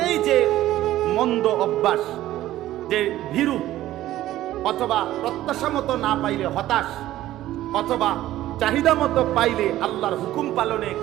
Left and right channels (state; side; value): quieter; left; 14.4 dB